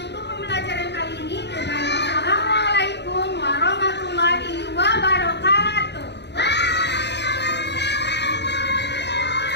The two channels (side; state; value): right; late; 0.50 ms